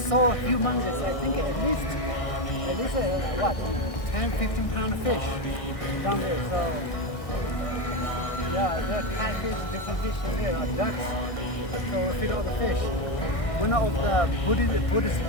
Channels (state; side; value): late; right; 1.5 ms